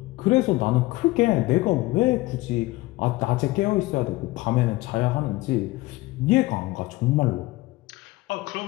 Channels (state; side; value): quieter; right; 20.2 dB